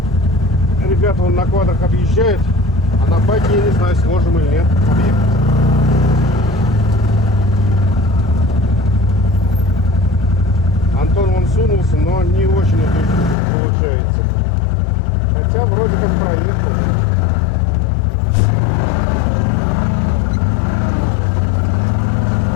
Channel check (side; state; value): right; drops out; at 13.4 s